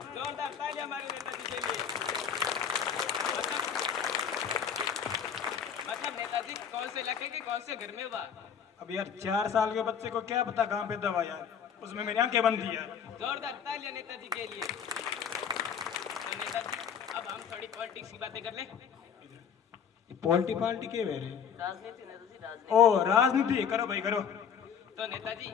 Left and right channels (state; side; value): quieter; right; 7.6 dB